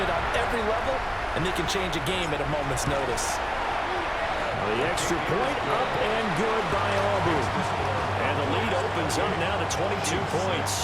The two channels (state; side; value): identical; both; correlation 1.00